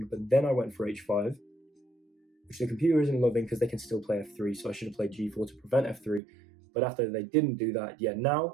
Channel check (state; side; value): drops out; left; at 6.2 s